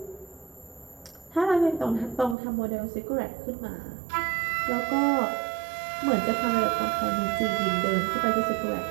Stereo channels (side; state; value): left; drops out; at 2.4 s